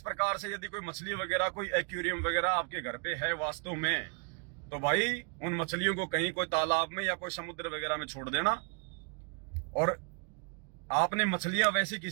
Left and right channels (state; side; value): quieter; left; 36.5 dB